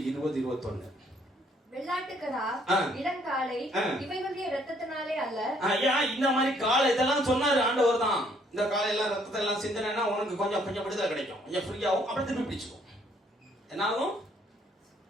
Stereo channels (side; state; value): both; normal; correlation 0.65